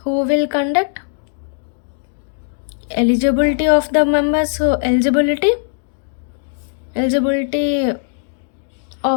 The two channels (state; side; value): silent; right; digital silence